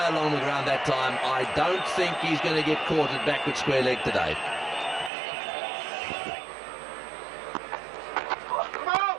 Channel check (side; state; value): left; drops out; at 5.1 s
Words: along the ground that time. I don't think he's going to get caught at backward square leg today. Now